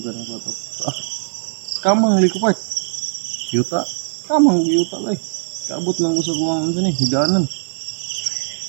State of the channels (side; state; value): left; silent; digital silence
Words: ako ito. Kamang likupart. Yuta. Kamang yuta lang. Kaabot lang ko sa buwangan dyan eh. Higanan.